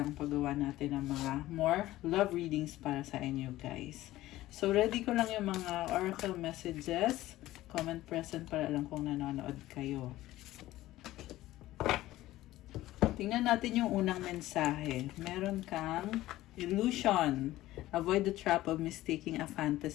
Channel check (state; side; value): quieter; right; 16.0 dB